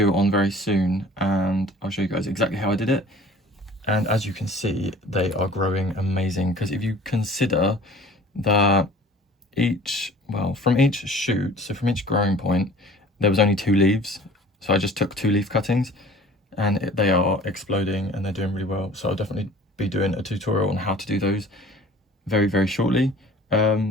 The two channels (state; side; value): normal; both; correlation 0.47